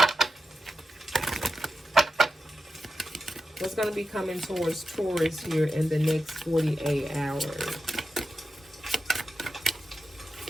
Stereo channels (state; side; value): normal; both; correlation 0.90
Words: What's going to be coming towards Taurus here in the next 48 hours?